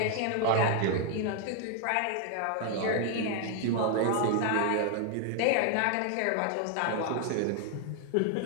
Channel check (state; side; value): different; both; correlation 0.00